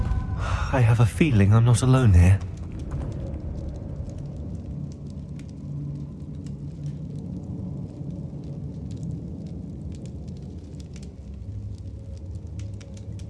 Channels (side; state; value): both; identical; correlation 1.00